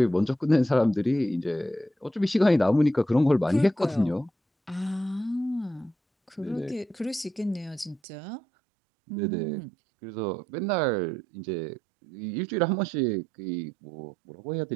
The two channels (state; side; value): drops out; left; at 8.0 s